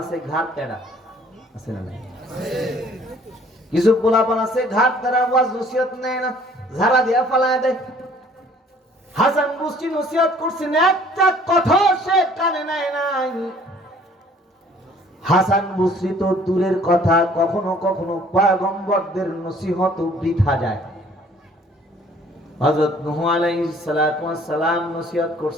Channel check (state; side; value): normal; both; correlation 0.56